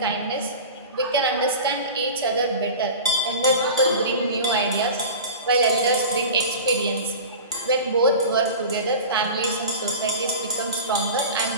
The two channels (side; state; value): both; inverted; correlation -0.33